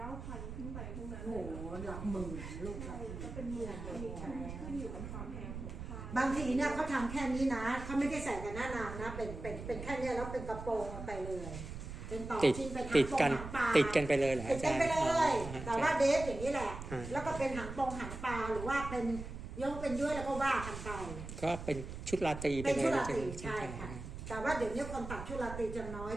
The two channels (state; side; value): noise; right; rumble, 9 dB below the sound